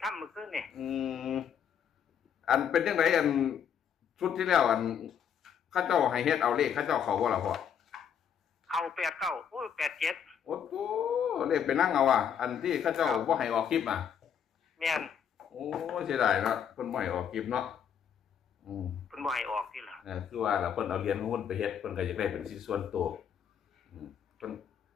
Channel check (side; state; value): right; quieter; 8.2 dB